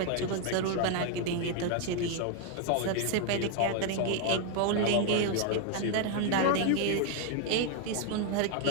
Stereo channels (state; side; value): different; both; correlation 0.01